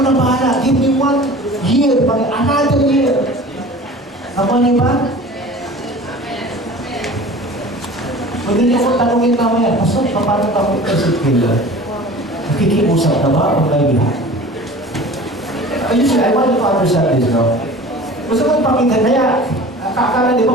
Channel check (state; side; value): normal; both; correlation 0.41